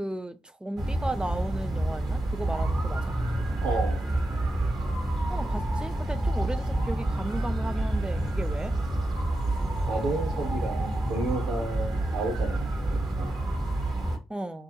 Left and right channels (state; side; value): normal; both; correlation 0.89